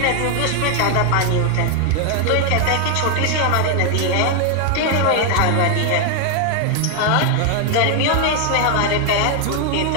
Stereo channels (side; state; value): both; different; correlation 0.01